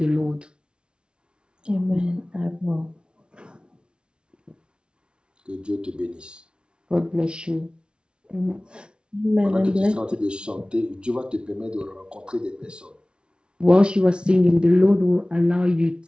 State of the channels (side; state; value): left; late; 0.056 ms